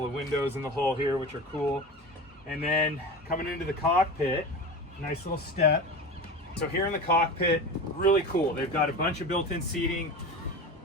of windows in the hull here, which are cool. And then coming into the cockpit, nice little step. So here in the cockpit, really cool. They've got a bunch of built-in seating.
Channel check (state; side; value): normal; both; correlation 0.29